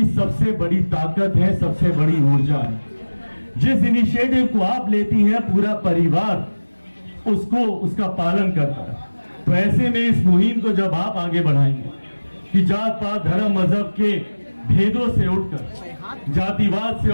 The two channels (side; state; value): both; inverted; correlation -1.00